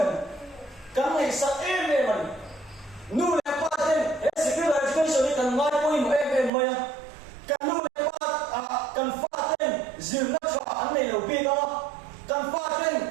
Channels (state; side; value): drops out; left; at 6.5 s